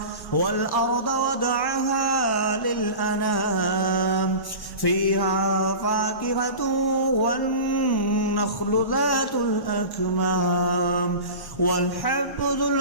والأرض وضعها للأنام فيها فاكهة والنخل ذات الأكمام والحب ذو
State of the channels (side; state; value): right; late; 1.1 ms